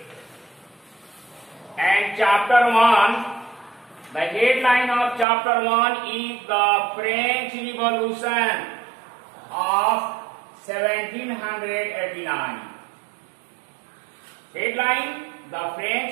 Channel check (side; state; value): left; drops out; at 5.2 s